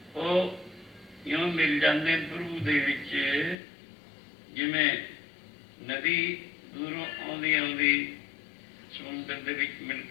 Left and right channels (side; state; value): right; drops out; at 3.6 s